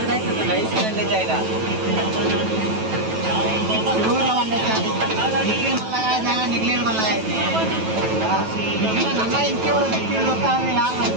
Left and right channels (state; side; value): late; left; 9.2 ms